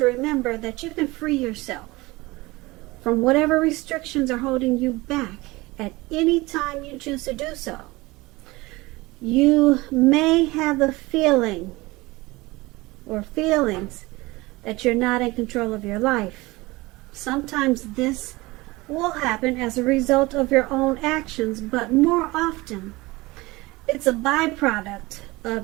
remember that you can free yourself from whatever restrictions are holding you back at any time you choose to do so. You may have the feeling or feelings that you're not in control of your life. Sometimes this will happen as a result of your own actions, but more often it's a byproduct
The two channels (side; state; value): left; quieter; 21.6 dB